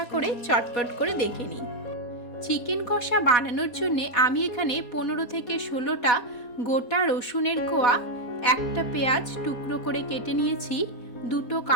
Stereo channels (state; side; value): late; right; 4.1 ms